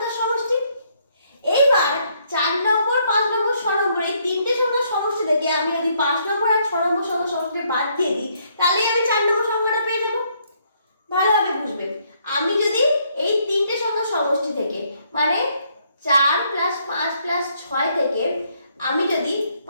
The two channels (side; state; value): both; inverted; correlation -0.70